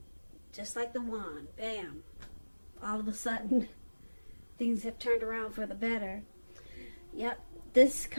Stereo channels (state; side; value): inverted; both; correlation -1.00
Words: Just like the wand, bam, all of a sudden, things have turned around for the better. Yep, this